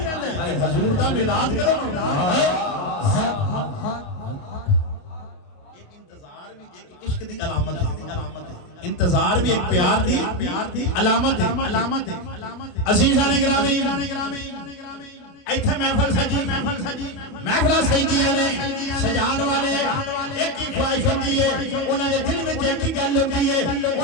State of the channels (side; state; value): right; late; 28 ms